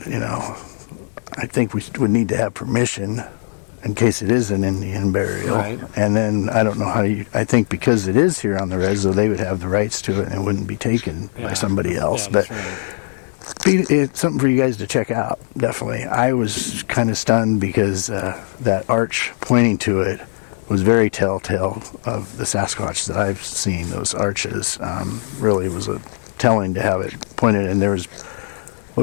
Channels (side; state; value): right; silent; 66 dB below the other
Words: I think we would need to have permission in case it is an Indian burial. Right. And then I don't know how I think because it is here on the res, though, they would have the rights to it and it wouldn't be taken by somebody else. Yeah, but right. it's something for you guys to check out, definitely. I was kind of stunned because that arch pointing to it was very telltale of the Sasquatch that I've seen. Those arches really was telling to have it pointed, and there was,